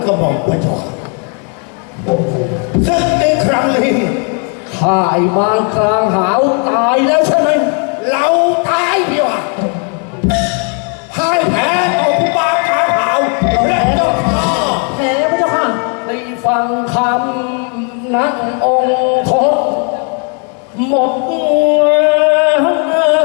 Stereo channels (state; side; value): quieter; right; 39.5 dB